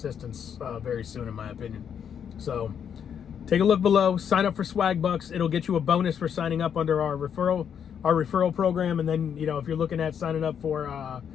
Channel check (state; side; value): quieter; right; 8.1 dB